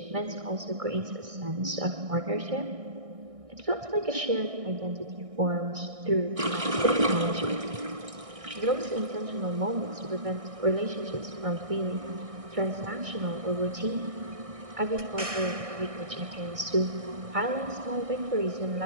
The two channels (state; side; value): late; left; 1.6 ms